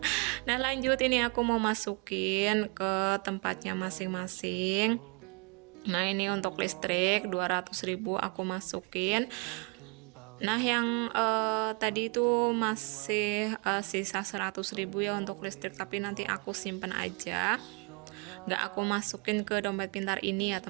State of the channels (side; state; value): left; quieter; 33.3 dB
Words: Nah lanjut, ini aku mau masukin ke tempatnya masing-masing. Nah ini untuk listrik 200.000 aku masukin. Nah yang tadi itu masih sisa 100.000 ya untuk listrik, tapi nanti aku simpen aja, nggak aku masukin ke dompet pintar ini ya